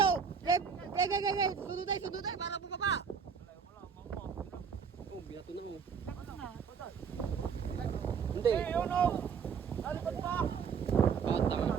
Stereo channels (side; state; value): left; quieter; 6.5 dB